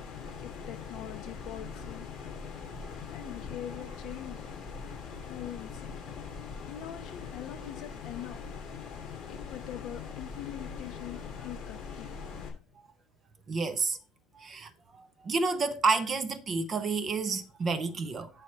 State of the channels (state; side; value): normal; both; correlation 0.68